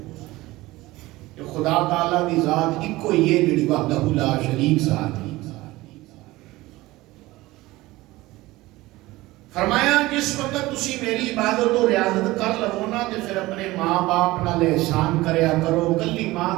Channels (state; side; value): quieter; left; 19.0 dB